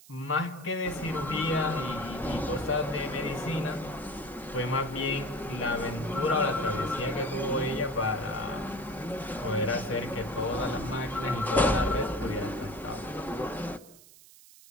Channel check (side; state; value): right; noise; hiss, 22 dB below the sound